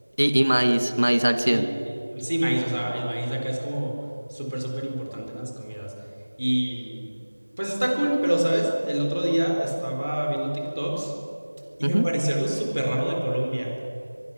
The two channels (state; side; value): inverted; both; correlation -1.00